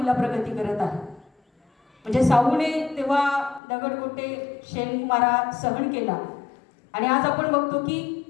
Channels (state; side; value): drops out; right; at 3.6 s